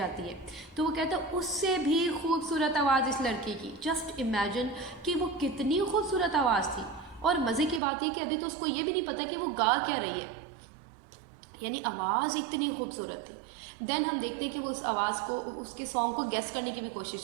है, तो वो कहता है उससे भी खूबसूरत आवाज़ इस लड़की की। जस्ट इमेजिन कि वो कितनी खूबसूरत आवाज़ थी, और मज़े की बात ये कि अभी तो उसको ये भी नहीं पता कि वो गा क्या रही है, यानी आवाज़ इतनी खूबसूरत थी। देन हम देखते हैं कि वो उस आवाज़ को, उसके सॉन्ग को गेस करने की भी कोशिश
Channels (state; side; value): drops out; left; at 7.8 s